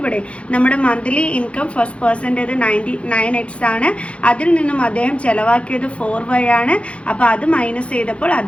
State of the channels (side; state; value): right; late; 0.061 ms